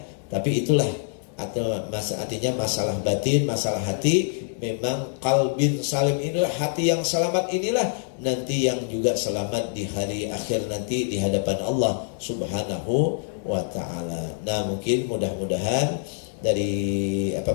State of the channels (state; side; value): silent; right; 62 dB below the other